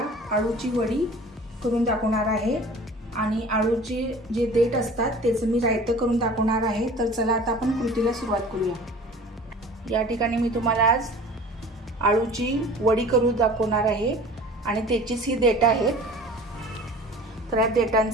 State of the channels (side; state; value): both; normal; correlation 0.43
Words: आळूची वडी करून दाखवणार आहे आणि आळूचे जे देठ असतात त्याचं मी रायतं करून दाखवणार आहे। तर चला आता आपण कृतीला सुरुवात करूया। या ठिकाणी मी तुम्हाला आज आळूची वडी करून दाखवणार आहे आणि त्याचीच ही देठ आहेत। तर या